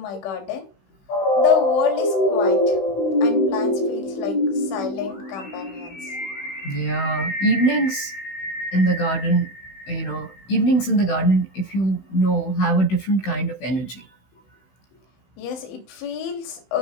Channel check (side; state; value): right; late; 16 ms